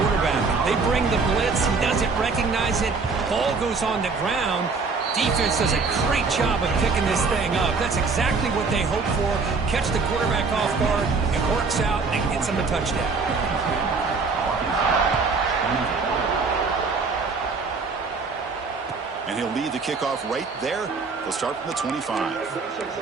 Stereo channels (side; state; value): left; quieter; 4.5 dB